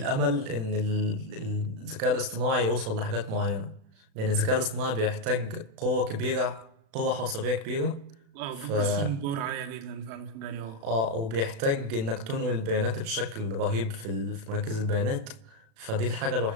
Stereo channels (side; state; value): left; late; 36 ms